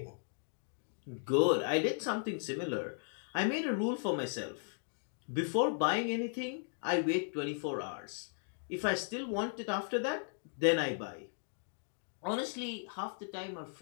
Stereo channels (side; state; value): right; silent; digital silence